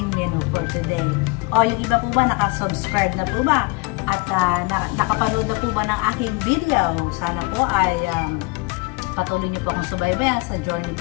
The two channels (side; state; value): right; quieter; 26.8 dB